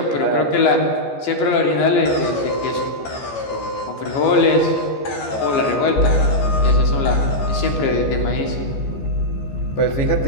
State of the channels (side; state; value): right; late; 15 ms